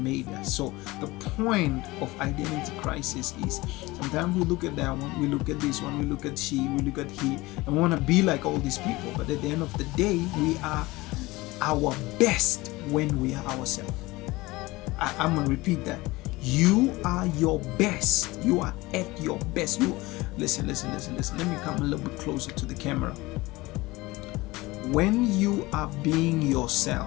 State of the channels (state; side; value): quieter; right; 20.9 dB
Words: us. So the point of identity crisis is, sometimes we look at that one, we look at this one, we look at she, we look at he, and we want to be like all these people. But at the end of the day, we are our best when we are ourselves. I'm going to repeat that. You are your best. You are at your best. Listen. Let me come a little bit closer to the camera. When you are being